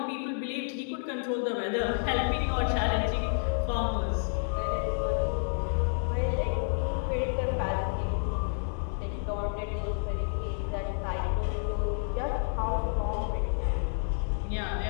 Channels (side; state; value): right; silent; digital silence